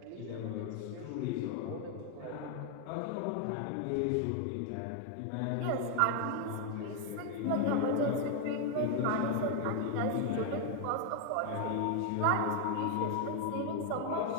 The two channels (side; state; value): both; different; correlation 0.00